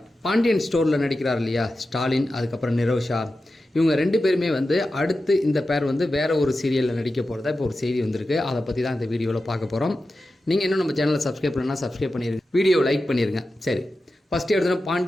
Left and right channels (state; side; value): normal; both; correlation 0.92